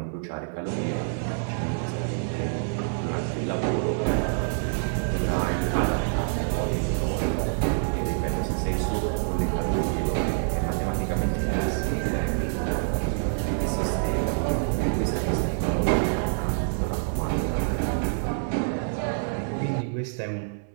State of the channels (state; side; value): silent; left; 60 dB below the other